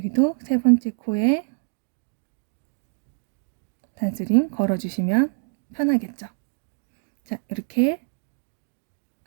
세 번째 코에 단스링 걸어주시면 편하겠죠. 자, 이렇게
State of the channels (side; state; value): left; silent; digital silence